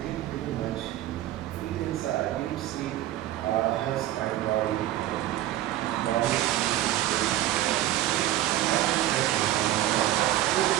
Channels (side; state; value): left; quieter; 13.8 dB